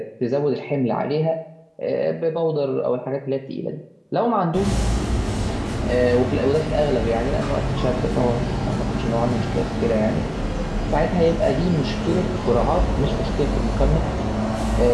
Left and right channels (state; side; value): identical; both; correlation 1.00